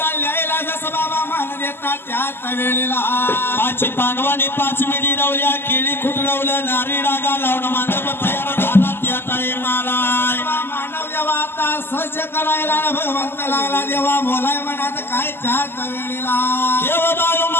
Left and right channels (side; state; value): right; late; 0.11 ms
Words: ल्यायला, जसं बाबा मान देतात त्याच वेळेला. पाच पांडवांनी 5 मिडी रवल्या, केळी खुटरवलं, नारी डागा लावून मांडप तयार झाला त्या टाईमाला. मानव देवा आता सज्ज करायला, भगवंत लागला देवा बोलाय म्हणत काय त्याच वेळेला. देव बाळू